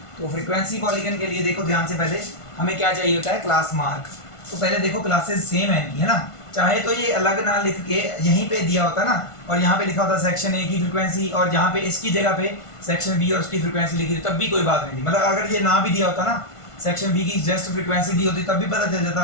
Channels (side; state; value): right; late; 1.5 ms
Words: तो फ्रीक्वेंसी पॉलीगन के लिए देखो ध्यान से, पहले हमें क्या चाहिए होता है, क्लास मार्क। तो पहले देखो क्लासेस सेम है इनकी, है ना। चाहे तो ये अलग ना लिख के यहीं पे दिया होता ना, और यहाँ पे लिखा होता सेक्शन ए की फ्रीक्वेंसी, और जहाँ पे इसकी जगह पे सेक्शन बी और उसकी फ्रीक्वेंसी लिखी थी, तब भी कोई बात नहीं थी। मतलब अगर ये ना भी दिया होता ना, सेक्शन बी की जस्ट फ्रीक्वेंसी दी होती, तब भी पता चल जाता